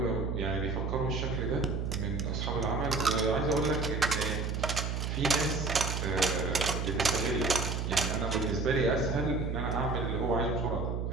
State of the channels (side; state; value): right; noise; hum, 1 dB below the sound